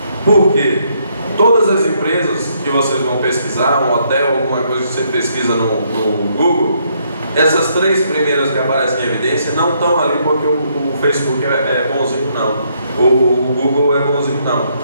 Por quê? Todas as empresas que vocês vão pesquisar, um hotel, alguma coisa que você pesquisa no Google, essas três primeiras que aparecem em evidência não estão ali porque o Facebook é bonzinho, não. O Google é bonzinho, não.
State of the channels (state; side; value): inverted; both; correlation -0.72